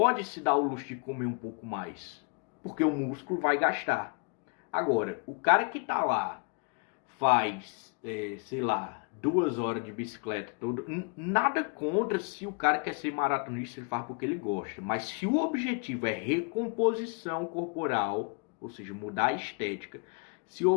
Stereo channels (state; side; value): quieter; right; 35.7 dB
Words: se dar o luxo de comer um pouco mais, porque o músculo vai gastar. Agora, o cara que está lá, faz, sei lá, 2 horas de bicicleta, nada contra se o cara quer ser maratonista, ele faz porque ele gosta. Mas se o objetivo é recomposição corporal, ou seja, mudar a estética, se o